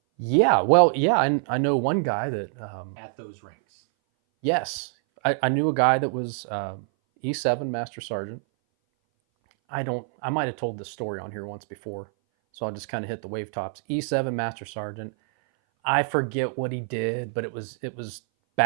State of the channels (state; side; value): silent; left; 58 dB below the other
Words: Yeah, well, yeah, I know one guy that, at those ranks. yes, I knew a guy that was E7 master sergeant. I might have told this story on here once before, so I'll just kind of hit the wave tops. E7 master sergeant. I forget what he did, but it was